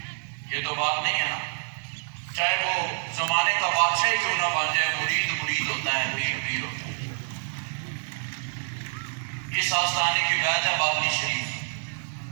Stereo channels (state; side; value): silent; left; 60 dB below the other